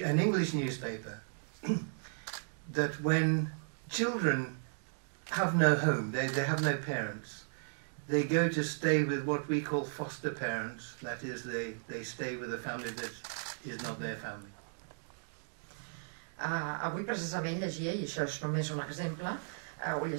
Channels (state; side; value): silent; left; digital silence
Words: English newspaper that when children have no home, they have no parents, they go to stay with what we call foster parents, that is they stay with a family that is not their family. Avui precisament llegia, i això és només un exemple, ho